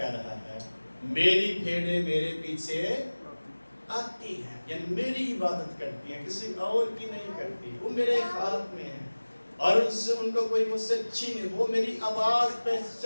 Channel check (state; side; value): inverted; both; correlation -1.00